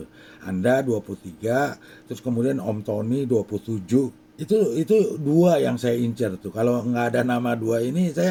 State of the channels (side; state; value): both; identical; correlation 1.00